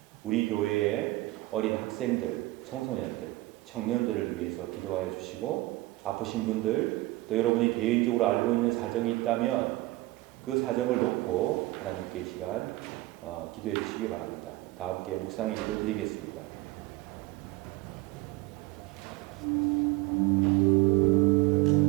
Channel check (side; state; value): left; quieter; 19.4 dB